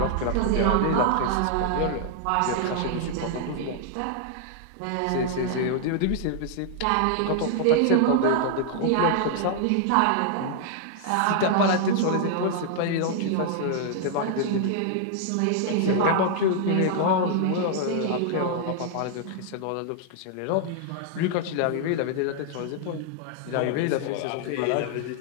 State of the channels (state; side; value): different; both; correlation 0.00